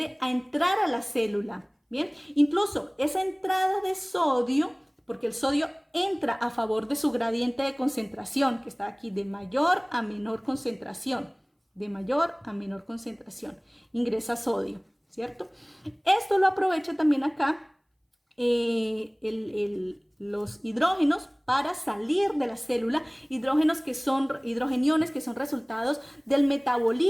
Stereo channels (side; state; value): both; identical; correlation 1.00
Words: a entrar a la célula. Bien, incluso esa entrada de sodio, porque el sodio entra a favor de su gradiente de concentración, que está aquí de mayor a menor concentración, de mayor a menor concentración, ingresa sodio, ¿cierto? Esto lo aprovecha también acá los hidrógenos para salir de la célula, hidrogeniones que son resultados del